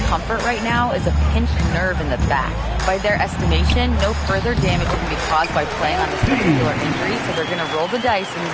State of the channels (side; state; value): both; identical; correlation 1.00